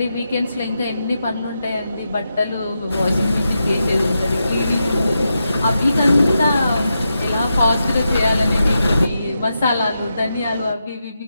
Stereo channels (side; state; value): both; inverted; correlation -0.87